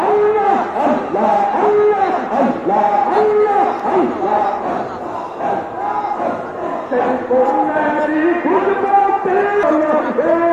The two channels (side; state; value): both; identical; correlation 1.00